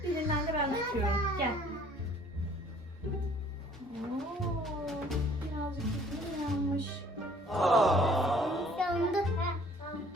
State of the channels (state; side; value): normal; both; correlation 0.56